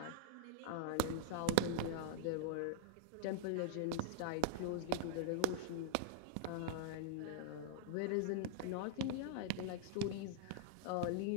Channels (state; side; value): different; both; correlation -0.01